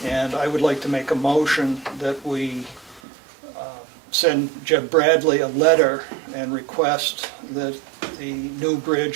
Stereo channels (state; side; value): drops out; left; at 3.0 s